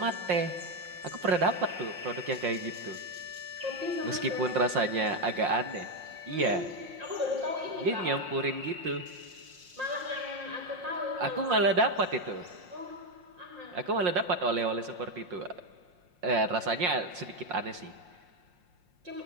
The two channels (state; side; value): late; left; 5.6 ms